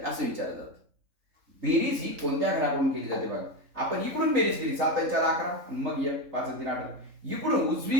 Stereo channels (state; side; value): late; left; 3.8 ms